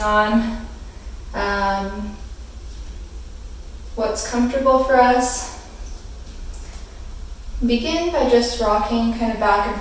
on what's comfortable for us. Begin by just rocking kind of back and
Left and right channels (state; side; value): identical; both; correlation 1.00